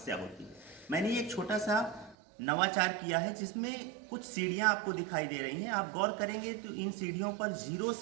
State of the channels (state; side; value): drops out; left; at 2.1 s